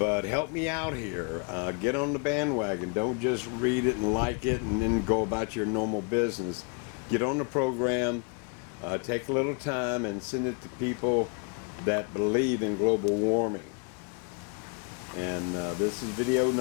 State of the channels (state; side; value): quieter; right; 34.4 dB